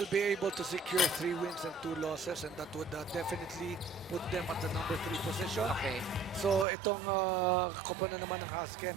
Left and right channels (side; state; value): left; drops out; at 6.7 s